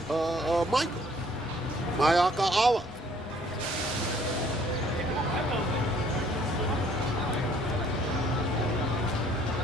Michael, Mayaka Allah.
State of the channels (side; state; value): both; normal; correlation 0.60